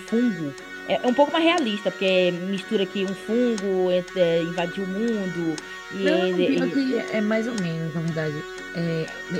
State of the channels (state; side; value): identical; both; correlation 1.00